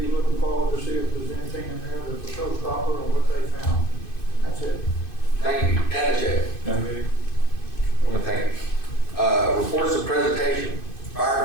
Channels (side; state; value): right; late; 2.5 ms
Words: looking forward to see if there's anything in there that's a showstopper or what they found. That's it. Thank you. Danachek. Thank you. Reports of presentation.